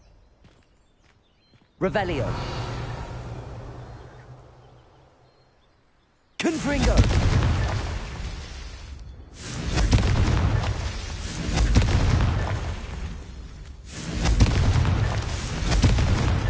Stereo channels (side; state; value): both; identical; correlation 1.00